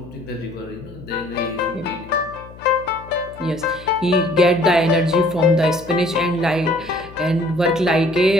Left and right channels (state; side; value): noise; left; hum, 19 dB below the sound